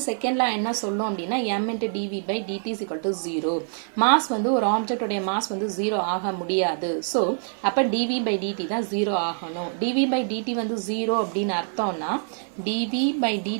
செகண்ட் லா என்ன சொல்லும் அப்படின்னா m into dv by dt is equal to 0. Mass வந்து ஒரு ஆப்ஜெக்டோடைய மாஸ் வந்து 0 ஆக முடியாது. ஸோ அப்போ dv by dt தான் 0 ஆகணும். dv by dt வந்து 0 அப்படின்னு அர்த்தம்னா dv by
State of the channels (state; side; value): silent; left; 62 dB below the other